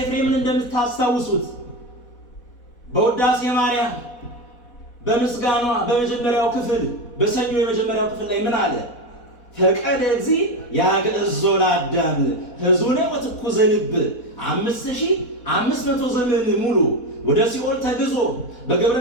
እንደምታስታውሱት በውዳሴ ማርያም በምስጋኗ በመጀመሪያው ክፍል በሰኞ የመጀመሪያው ክፍል ላይ ምን አለ? ፈቀደ እግዚእ ያግዕዞ ለአዳም ሕዙነ ወትኩዘ ልብ 5500 ዘመን ሙሉ ወደ ሲኦል ተግዞ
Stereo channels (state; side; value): late; right; 4.1 ms